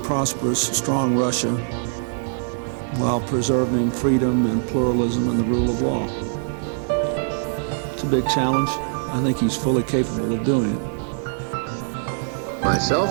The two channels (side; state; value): left; silent; digital silence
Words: prosperous, strong Russia while preserving freedom and pluralism and the rule of law. It's a big challenge. I think he's fully capable of doing it.